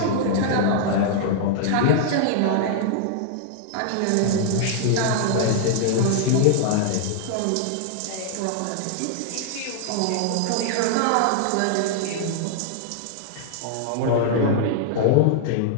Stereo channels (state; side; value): different; both; correlation 0.00